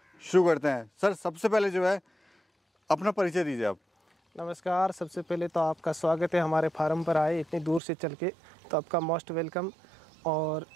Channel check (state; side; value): drops out; left; at 7.8 s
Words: शुरू करते हैं। सर सबसे पहले जो है अपना परिचय दीजिए आप। नमस्कार, सबसे पहले तो आपका स्वागत है हमारे फार्म पर आए इतनी दूर से चल के, तो आपका मोस्ट वेलकम। और